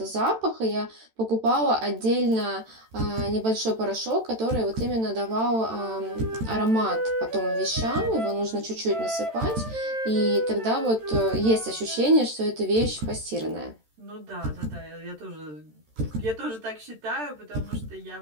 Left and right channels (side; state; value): left; late; 13 ms